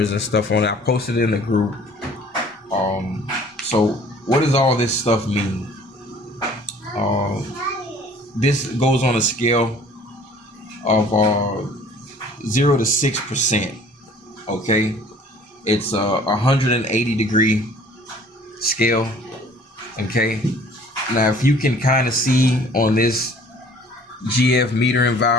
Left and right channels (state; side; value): normal; both; correlation 0.53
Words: and stuff on it. I posted it in the group. So what does all this stuff mean? This goes on a scale of 0 to 6%. Okay, it's a 180 degree scale. Okay, now if you can kind of see on this GF metering